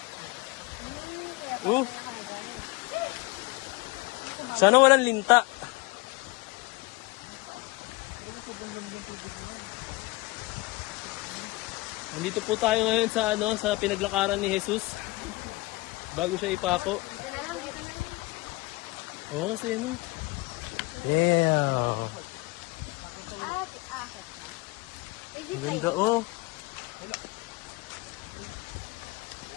Oh. Sana walang linta. Nandito po tayo ngayon sa sa pinaglakaran ni Jesus. Bago siya ipako. Dito na lang, dito na lang. Oo, kasi ano. Yeah. Ang ganda, oh.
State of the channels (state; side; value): quieter; right; 22.5 dB